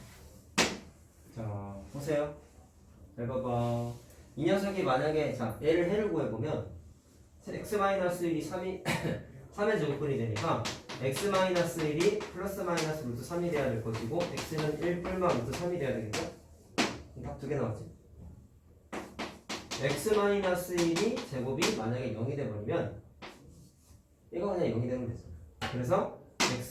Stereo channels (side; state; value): both; identical; correlation 1.00